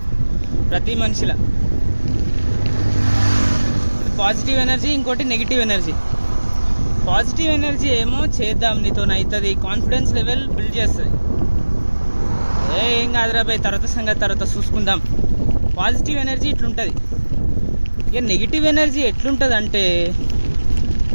ప్రతి మనిషిలో పాజిటివ్ ఎనర్జీ, ఇంకోటి నెగిటివ్ ఎనర్జీ. పాజిటివ్ ఎనర్జీ ఏమో చేద్దాం, నీతో అవుతుంది, కాన్ఫిడెన్స్ లెవెల్ బిల్డ్ చేస్తుంది. ఏం కాదురా భయ్, తర్వాత చూసుకుందాం. పాజిటివ్ ఎనర్జీ ఇట్లుంటుంది. ఇక నెగిటివ్ ఎనర్జీ ఎట్లుంటుంది అంటే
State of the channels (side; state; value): both; inverted; correlation -1.00